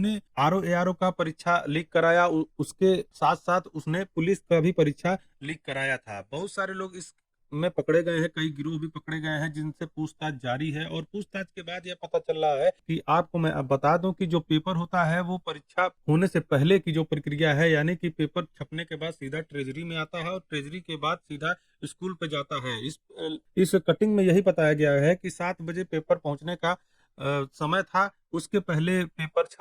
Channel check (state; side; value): identical; both; correlation 1.00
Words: आरओ एआरओ का परीक्षा लीक कराया, उसके साथ साथ उसने पुलिस का भी परीक्षा लीक कराया था। बहुत सारे लोग इस में पकड़े गए हैं, कई गिरोह भी पकड़े गए हैं जिनसे पूछताछ जारी है। और पूछताछ के बाद यह पता चल रहा है कि आपको मैं अब बता दूं कि जो पेपर होता है वो परीक्षा होने से पहले की जो प्रक्रिया है, यानी कि पेपर छपने के बाद सीधा ट्रेजरी में आता है और ट्रेजरी के बाद सीधा स्कूल पे जाता है। इस कटिंग में यही बताया गया है कि 7 बजे पेपर पहुंचने का समय था। उसके पहले पेपर